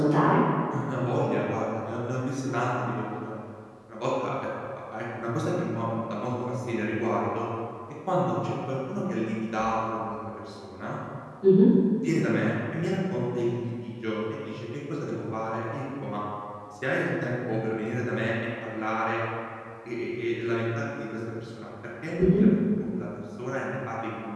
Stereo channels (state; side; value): identical; both; correlation 1.00